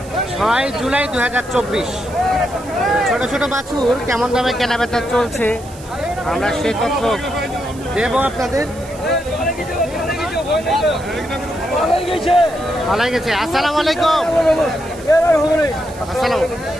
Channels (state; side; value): noise; right; hiss, 20 dB below the sound